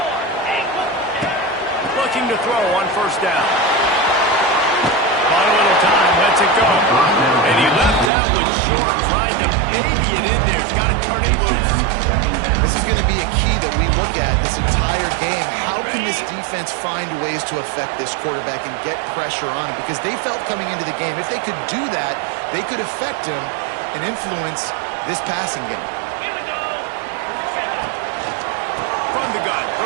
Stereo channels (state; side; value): drops out; left; at 8.1 s